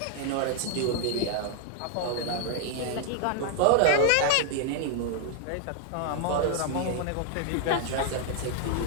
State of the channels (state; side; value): different; both; correlation 0.00